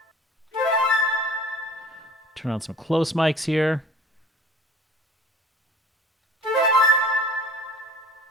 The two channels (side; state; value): both; normal; correlation 0.46